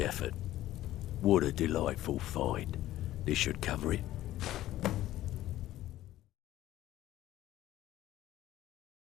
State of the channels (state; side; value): quieter; right; 14.5 dB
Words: effort. What a delightful find. This should cover it.